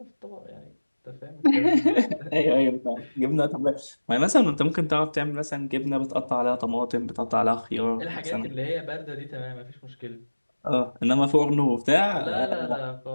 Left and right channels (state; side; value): inverted; both; correlation -1.00